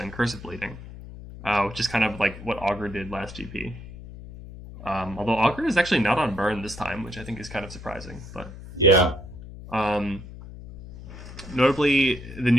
Curse of Bleeding, which is kind of like what Augur did last GP. Although Augur is actually not on Burn this time, which I think is kind of surprising. But yeah. Notably, the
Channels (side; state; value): left; noise; hum, 14 dB below the sound